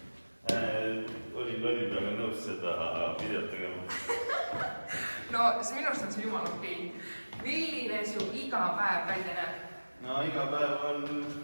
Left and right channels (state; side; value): inverted; both; correlation -1.00